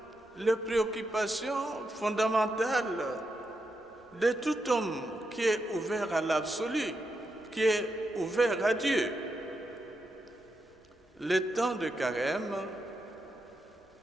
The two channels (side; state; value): both; normal; correlation 0.85